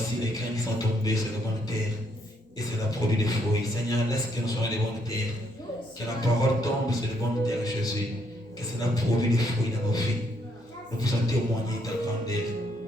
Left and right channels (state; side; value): normal; both; correlation 0.72